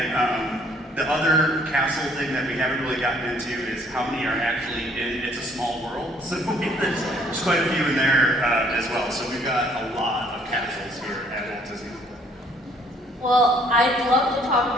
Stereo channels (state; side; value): normal; both; correlation 0.61